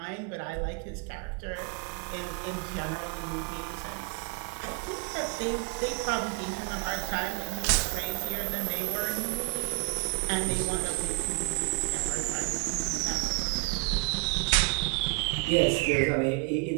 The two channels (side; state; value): left; quieter; 25.6 dB